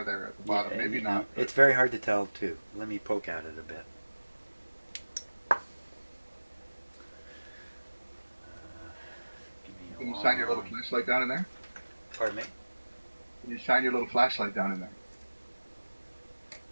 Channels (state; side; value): inverted; both; correlation -1.00